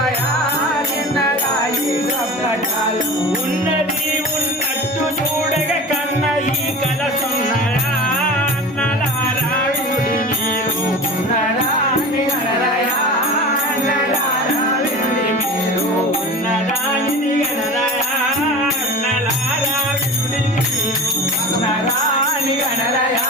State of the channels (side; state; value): both; normal; correlation 0.33